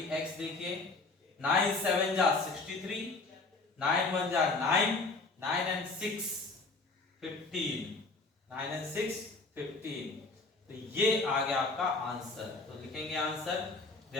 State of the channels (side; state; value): right; quieter; 3.6 dB